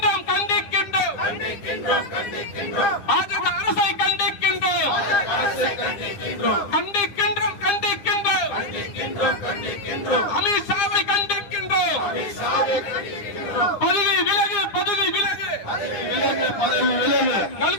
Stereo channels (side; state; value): right; late; 10 ms